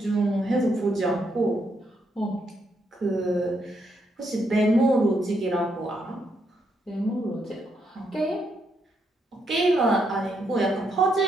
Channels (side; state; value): both; normal; correlation 0.77